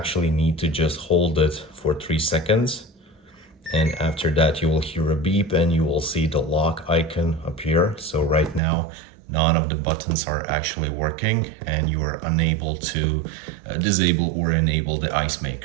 need to just hold it for 3 seconds, and after that you will hear a beep and you will see the lock icon appear. So right now none of the buttons are actually working and you are unable to disable or enable the ice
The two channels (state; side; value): drops out; left; at 8.6 s